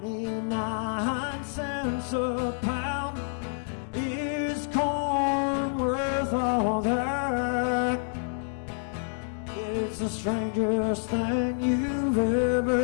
cents a pound, is corn worth all that? It's the strangest thing you've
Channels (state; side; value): silent; right; 59 dB below the other